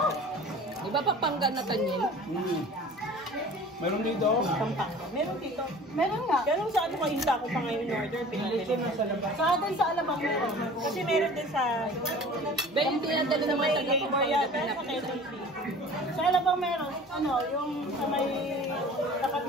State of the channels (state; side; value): normal; both; correlation 0.43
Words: Di ba Pampanga na tanyin? Meron dito. Pampanga. Meron dito. Meron nga. Kaya nung sa ano kainta ko pa ngayon order, pinapili. Sa atin sa Alabang meron. Kasi meron din sa... Ba yung tinadala naman sa labor yata sa Quezon City. Sa Alabang meron. Ano, yung sa may tapat